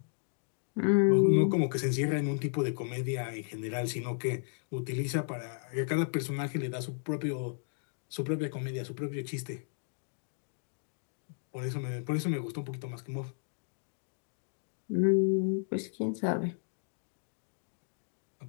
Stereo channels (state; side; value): silent; right; digital silence